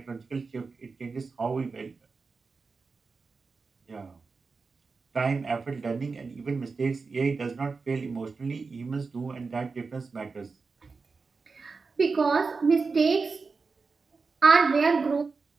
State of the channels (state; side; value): quieter; left; 4.5 dB